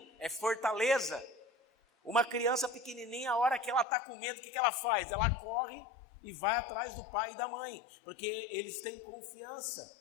é fortaleza. Uma criança pequenininha, a hora que ela está com medo, o que ela faz? Ela corre e vai atrás do pai e da mãe, porque eles têm confiança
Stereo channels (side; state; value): right; drops out; at 3.9 s